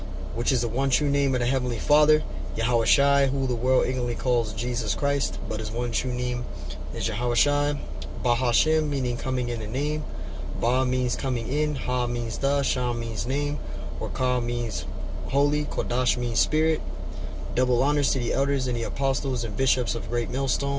which is the one true name of the Heavenly Father. YAHAWASHI, who the world ignorantly calls Jesus Christ, but his one true name is YAHAWASHI. BAHASHAM, meaning coming in the name. Ba means coming in, Ha means the, Sham means name, RACHAA means holy, QADASH means spirit. Double honors to the elders and the apostles and bishops of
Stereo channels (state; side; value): identical; both; correlation 1.00